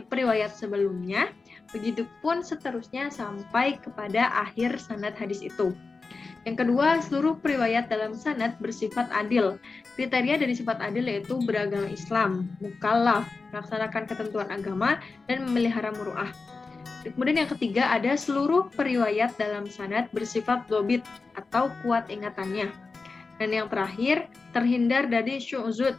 periwayat sebelumnya, begitupun seterusnya sampai kepada akhir sanad hadis itu. Yang kedua, seluruh periwayat dalam sanad bersifat adil. Kriteria dari sifat adil yaitu beragama Islam, mukallaf, melaksanakan ketentuan agama, dan memelihara muru'ah. Kemudian yang ketiga ada seluruh periwayat dalam sanad bersifat dhobit atau kuat ingatannya. Dan yang terakhir, terhindar dari syu'zud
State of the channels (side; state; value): right; quieter; 4.1 dB